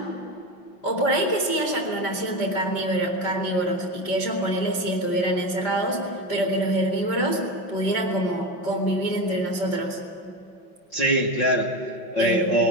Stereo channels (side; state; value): right; late; 5.7 ms